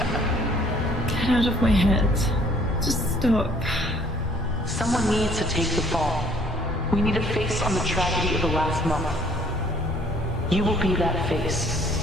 Get out of my head. Just stop. Someone needs to take the fall. We need a face on the tragedy of the last month. You will be that face.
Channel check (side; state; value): both; normal; correlation 0.59